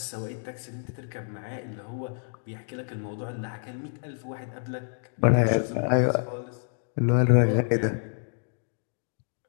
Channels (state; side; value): silent; right; digital silence